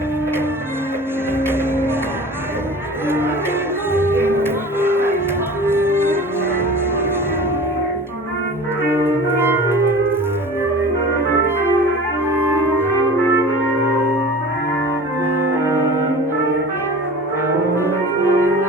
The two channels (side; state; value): both; normal; correlation 0.39